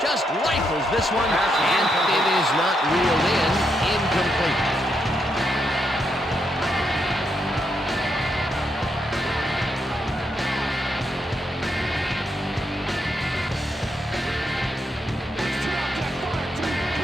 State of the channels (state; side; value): normal; both; correlation 0.80